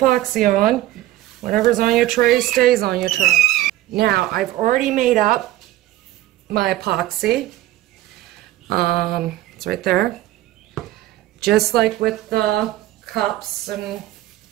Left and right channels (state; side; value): quieter; left; 15.3 dB